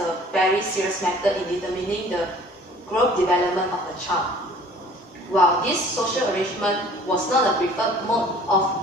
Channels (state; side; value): normal; both; correlation 0.51